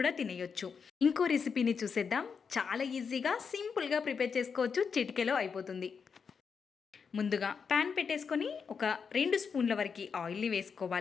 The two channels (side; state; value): right; quieter; 6.0 dB